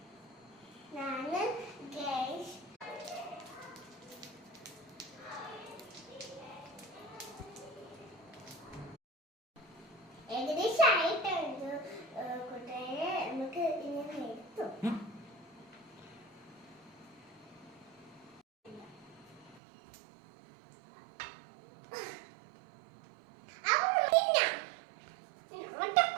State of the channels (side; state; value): left; drops out; at 19.6 s